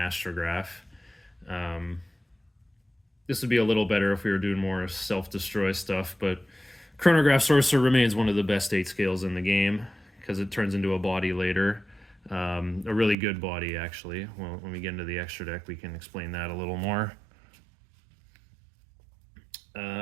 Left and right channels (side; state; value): left; drops out; at 13.2 s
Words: This would be a little better if we were doing more self-destroy stuff, but Chronograph Sorcerer remains one of the best 8 scales in the game because it turns into a body later. A really good body, actually. Well, when we get into the extra deck, we can explain that a little more.